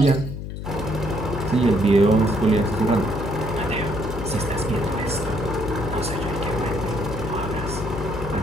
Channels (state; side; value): noise; left; hum, 7 dB below the sound